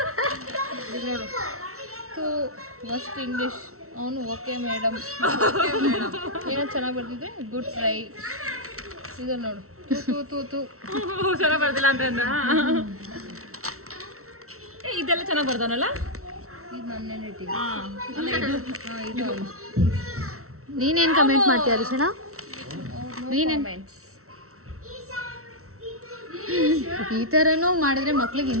ನೋಡು ತೂ ಮಸ್ಟ್ ಇಂಗ್ಲೀಷ್. ಅವನು ಓಕೆ ಮೇಡಮ್ ಏನೋ ಚೆನ್ನಾಗಿ ಬರ್ದಿದ್ದೆ ಗುಡ್ ಟ್ರೈ. ಇದು ನೋಡು ತೂ ತೂ ತೂ ಚೆನ್ನಾಗಿ ಬರ್ದಿಲ್ಲ ಅಂತ ಇದೆಲ್ಲ ಚೆನ್ನಾಗಿ ಬರ್ದವನಲ್ಲ. ಇದು ನನ್ನ ರೇಟಿಂಗ್. ಇದು ನೀನೇನು ಕಮೆಂಟ್ ಮಾಡ್ತೀಯ ಅರಿಶಣ? ಈ ಥರನೂ ಮಾಡಿದ್ರೆ ಮಕ್ಳಿಗೆ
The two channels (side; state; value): left; late; 0.63 ms